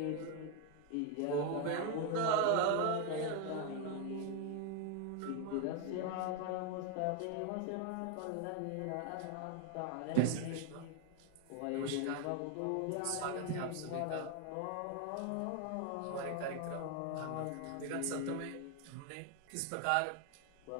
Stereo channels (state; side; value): different; both; correlation 0.01